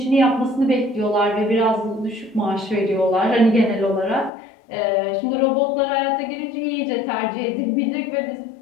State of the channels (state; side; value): drops out; right; at 4.3 s